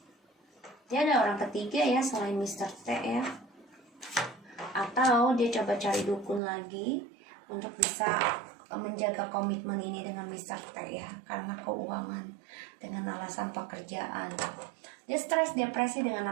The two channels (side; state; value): left; drops out; at 6.4 s